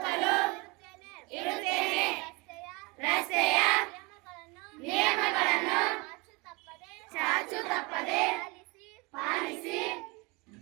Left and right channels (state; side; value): quieter; left; 26.8 dB